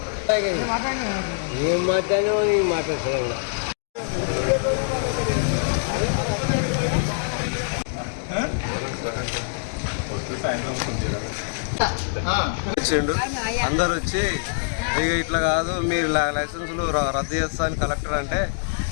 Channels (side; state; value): right; silent; digital silence